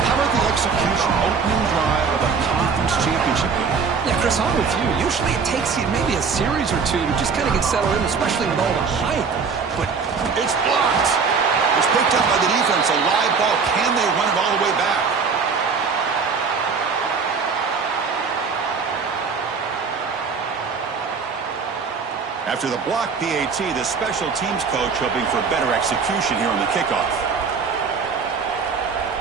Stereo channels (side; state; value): left; quieter; 5.4 dB